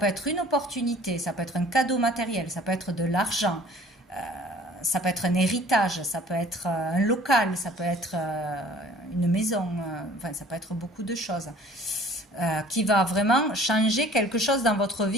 être une opportunité, ça peut être un cadeau matériel, ça peut être de l'argent, ça peut être un héritage, ça peut être un local, ça peut être une maison, enfin ça peut être beaucoup de choses. Qui va vraiment changer quelque chose dans votre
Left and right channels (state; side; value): normal; both; correlation 0.51